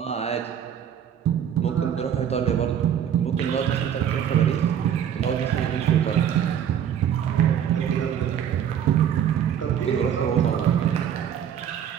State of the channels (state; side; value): quieter; left; 9.2 dB